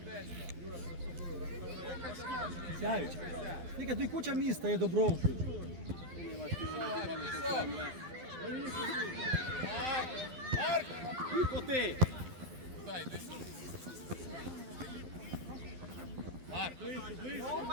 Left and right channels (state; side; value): late; left; 12 ms